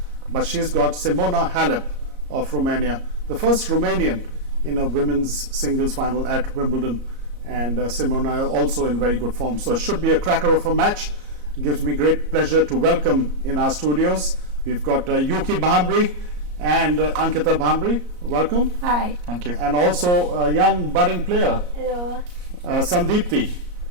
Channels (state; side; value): late; left; 34 ms